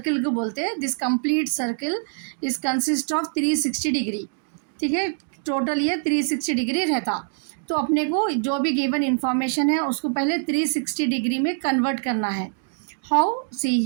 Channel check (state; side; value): silent; left; digital silence